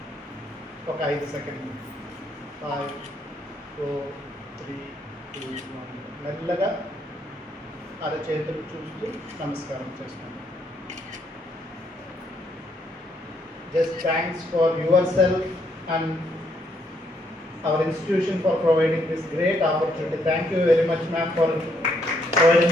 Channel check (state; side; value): normal; both; correlation 0.72